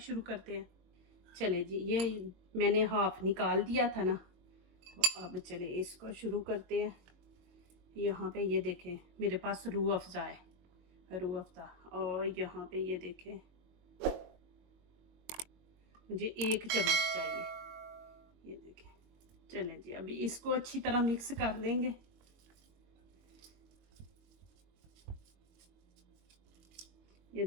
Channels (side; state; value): left; late; 22 ms